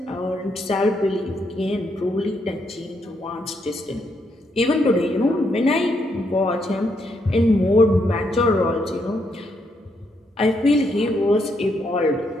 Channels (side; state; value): both; normal; correlation 0.77